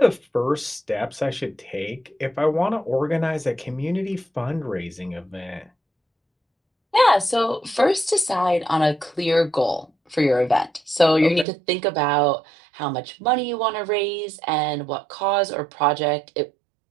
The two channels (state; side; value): drops out; left; at 11.5 s